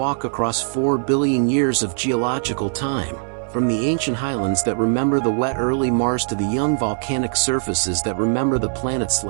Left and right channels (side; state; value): left; silent; digital silence